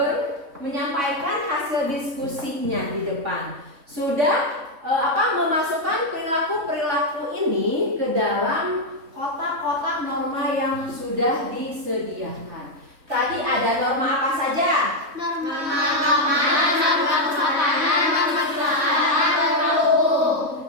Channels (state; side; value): late; left; 3.6 ms